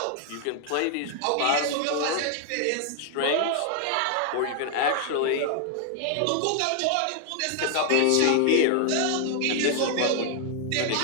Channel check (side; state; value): both; different; correlation 0.00